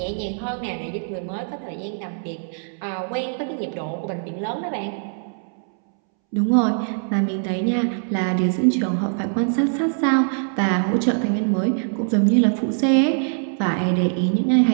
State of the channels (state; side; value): silent; left; 64 dB below the other